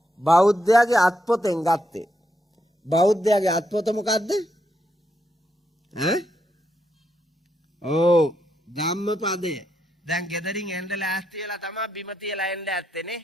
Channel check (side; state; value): both; normal; correlation 0.80